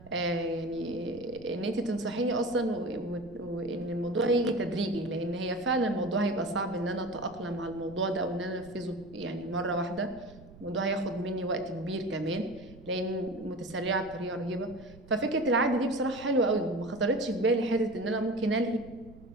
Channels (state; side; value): noise; right; rumble, 20 dB below the sound